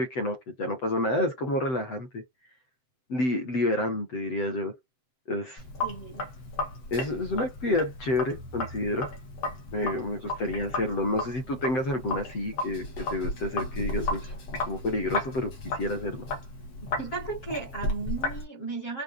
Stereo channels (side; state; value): right; late; 8.1 ms